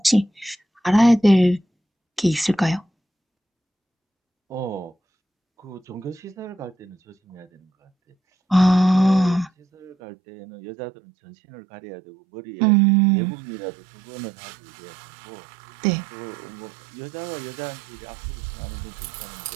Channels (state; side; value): drops out; left; at 10.0 s